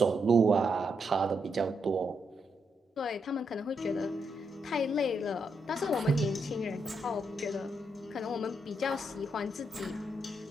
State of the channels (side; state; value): both; normal; correlation 0.80